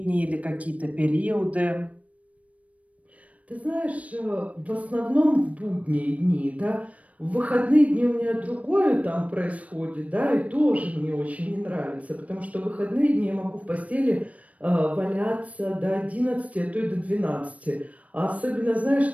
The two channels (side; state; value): left; late; 0.067 ms